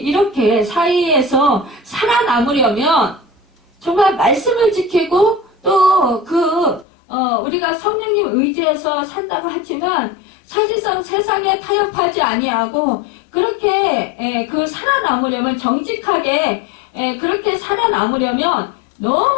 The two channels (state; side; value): drops out; right; at 6.9 s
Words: 이렇게 사이에서 살아남으려면 정말 말씀을 지키고 또 우리가 성령님 의지해서 산다고 하지만 사실상 세상에 타협하지 아니하고 그렇게 살아남으려면 정직하게 그렇게 살아남으려면